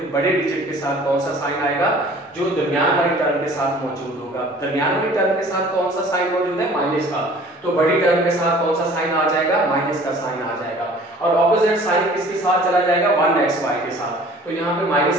बड़े डिजिट के साथ कौन सा साइन आएगा, जो दरमियान वाली टर्म के साथ मौजूद होगा। दरमियान वाली टर्म के साथ कौन सा साइन मौजूद है, माइनस का, तो बड़ी टर्म के साथ कौन सा साइन आ जाएगा, माइनस का साइन आ जाएगा। और ऑपोजिट साइन किसके साथ चला जाएगा, 1xy के साथ। तो यहाँ पे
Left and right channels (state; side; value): normal; both; correlation 0.49